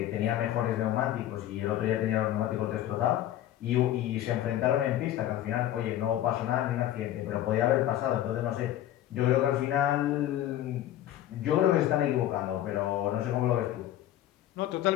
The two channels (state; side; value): quieter; right; 12.8 dB